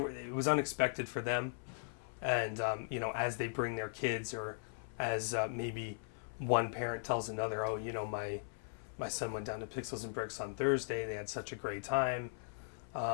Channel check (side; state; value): right; silent; 52 dB below the other